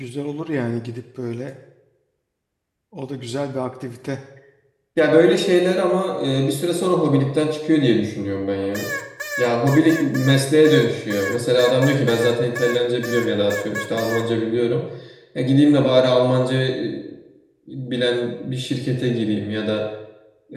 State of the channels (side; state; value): both; identical; correlation 1.00